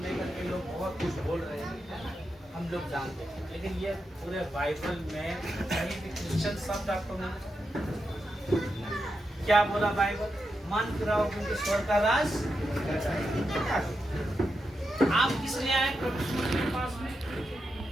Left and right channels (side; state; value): both; normal; correlation 0.87